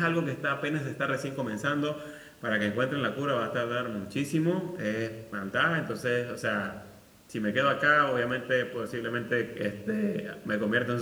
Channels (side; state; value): both; identical; correlation 1.00